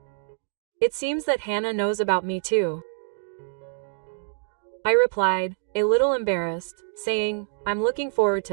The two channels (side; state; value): left; silent; digital silence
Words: It seems that Hannah knows about me too. I replied, a little embarrassed, saying, I'm looking forward